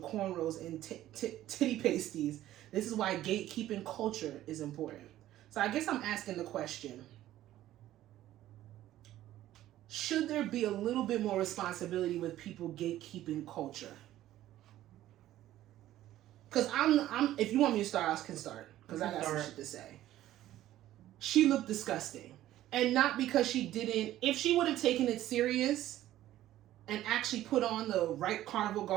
cornrows and titty pasties? This is why gatekeeping culture is important. So I guess I'm asking the question, should there be a little bit more responsibility with people gatekeeping culture? Because I'm if you want me to start, I can start. Because I got some shit to say. She looked disgusting. And not because she didn't, if she would have taken it serious and actually put on the right carnival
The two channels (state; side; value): quieter; left; 13.8 dB